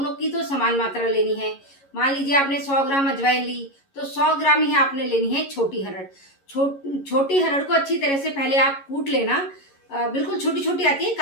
की तो समान मात्रा लेनी है। मान लीजिए आपने 100 ग्राम अजवाइन ली तो 100 ग्राम ही आपने लेनी है छोटी हरड़। छोटी हरड़ को अच्छी तरह से पहले आप कूट लेना। बिल्कुल छोटी छोटी आती है,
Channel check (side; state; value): right; late; 11 ms